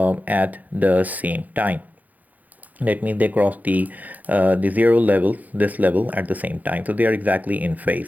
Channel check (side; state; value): left; late; 0.080 ms